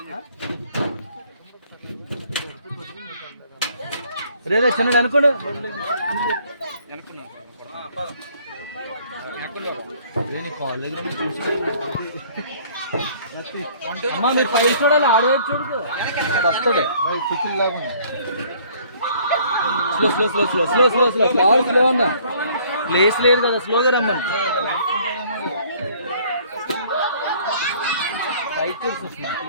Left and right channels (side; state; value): both; inverted; correlation -0.57